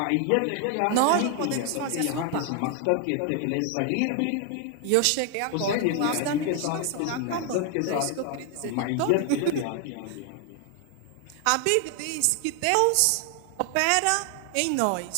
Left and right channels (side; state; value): both; different; correlation 0.00